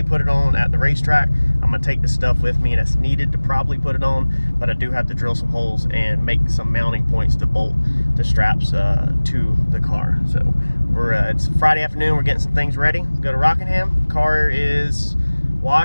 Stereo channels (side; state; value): both; inverted; correlation -1.00